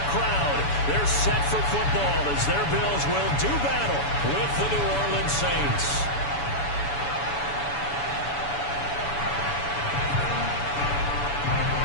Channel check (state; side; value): late; right; 7.0 ms